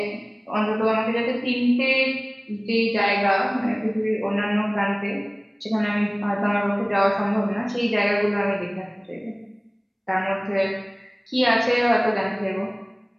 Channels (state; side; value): identical; both; correlation 1.00